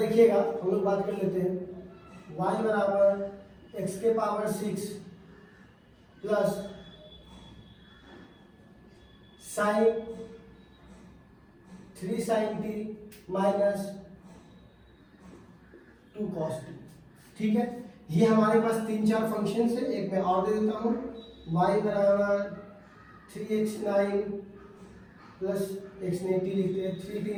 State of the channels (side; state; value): both; identical; correlation 1.00